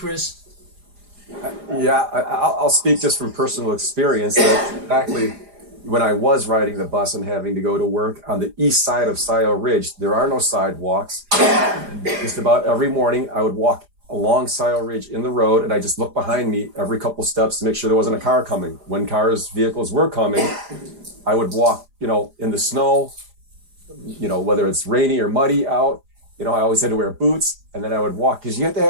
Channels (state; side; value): late; left; 4.9 ms